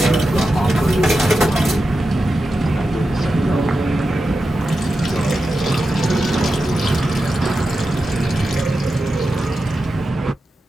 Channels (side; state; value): both; normal; correlation 0.90